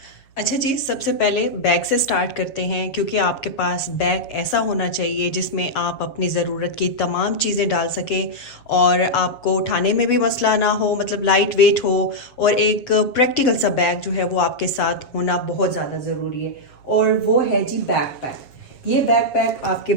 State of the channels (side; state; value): right; late; 7.3 ms